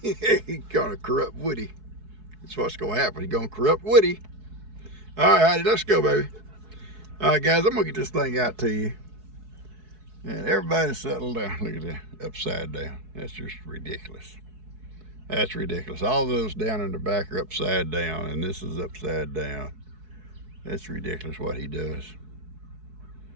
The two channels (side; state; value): left; late; 4.7 ms